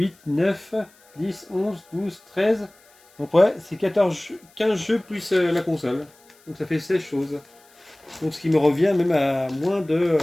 9, 10, 11, 12, 13. Donc ouais, c'est 15 jeux plus la console. Donc ça fait 16 choses. Donc ce qui me revient même à moins de...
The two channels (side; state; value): left; noise; hiss, 30 dB below the sound